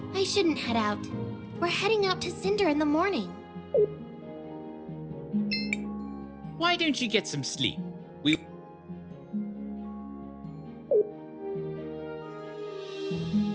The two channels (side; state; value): both; identical; correlation 1.00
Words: I shouldn't head out. We're heading out to Cinder in the morning. Why don't you get some sleep?